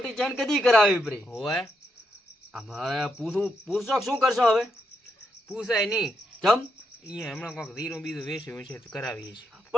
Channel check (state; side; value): normal; both; correlation 0.80